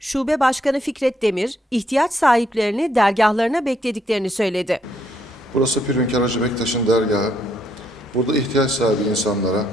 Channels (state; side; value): normal; both; correlation 0.73